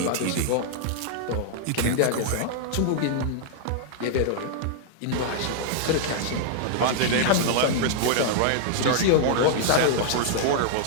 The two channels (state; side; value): different; both; correlation -0.01